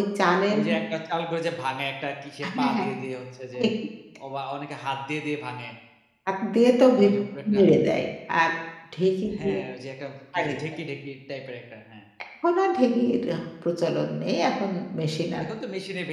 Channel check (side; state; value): both; identical; correlation 1.00